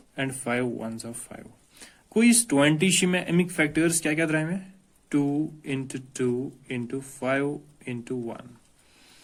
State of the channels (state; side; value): identical; both; correlation 1.00